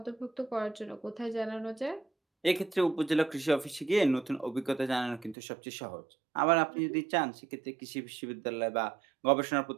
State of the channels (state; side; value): drops out; left; at 5.4 s